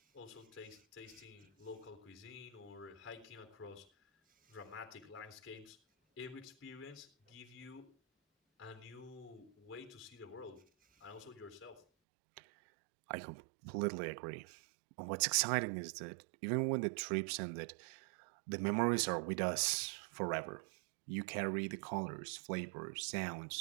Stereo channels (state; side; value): drops out; left; at 11.9 s